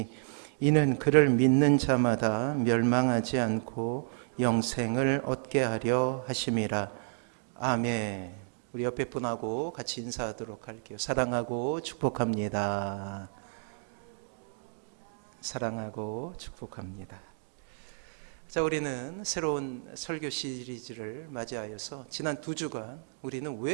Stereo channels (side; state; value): left; silent; digital silence